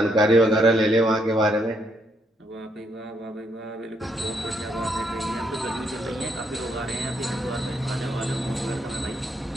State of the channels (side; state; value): both; normal; correlation 0.74